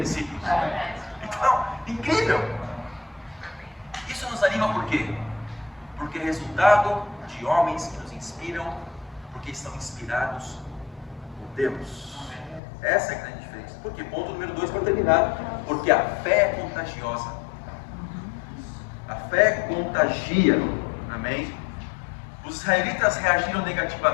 discípulos. Então, incrível! Isso nos anima por quê? Porque é resultado de homens que nos inspiram, porque estão inspirados por Deus. Essa é a grande diferença. Por quê? Ponto número 2 para terminar. Porque a fé é contagiosa. A fé contagia. Amém? Os israelitas reagiram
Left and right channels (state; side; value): drops out; right; at 12.6 s